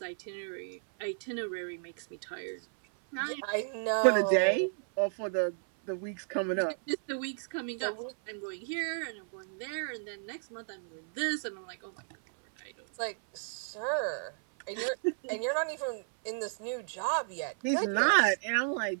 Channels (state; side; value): silent; left; 56 dB below the other